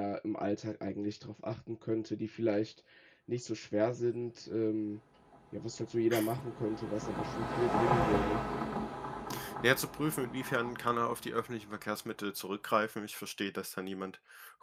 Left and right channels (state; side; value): identical; both; correlation 1.00